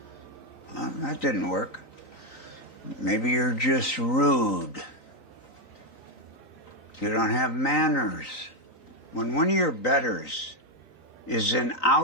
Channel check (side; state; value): right; late; 3.9 ms